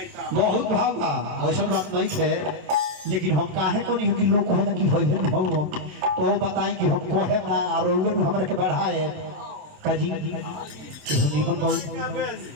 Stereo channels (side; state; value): left; late; 27 ms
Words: भाव बा ऐसा बात नहीं है, लेकिन हम काहे को नहीं कि लोग कहे ना कि होई है हो तो बताई कि हम कहे ना और हमरा के बढ़ाए काजी कि